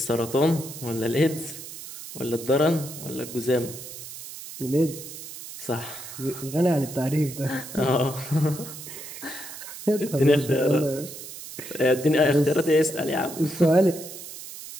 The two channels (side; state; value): right; noise; hiss, 12 dB below the sound